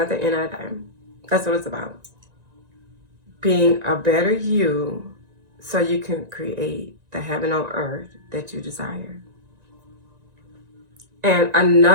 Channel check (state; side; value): late; left; 1.9 ms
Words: the end of the day, that's what it's about. Being a better you so you can create the heaven on earth that you desire. And